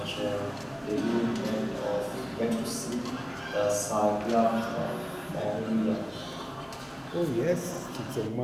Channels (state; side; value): identical; both; correlation 1.00